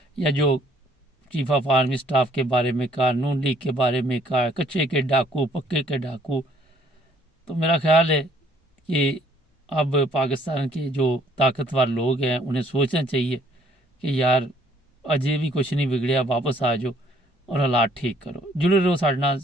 या जो चीफ ऑफ आर्मी स्टाफ के बारे में कहा, नून लीग के बारे में कहा, कच्चे के डाकू पक्के के डाकू, तो मेरा ख्याल है कि अब पाकिस्तान के जो ताकतवर लोग हैं उन्हें सोचना चाहिए कि यार अजय भी कुछ नहीं बिगड़िया, वापस आ जाओ और हालात ठीक करो। जुड़े रहो, साढ़े नाल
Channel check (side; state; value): both; normal; correlation 0.62